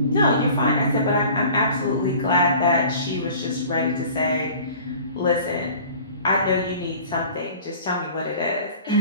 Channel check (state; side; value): inverted; both; correlation -0.45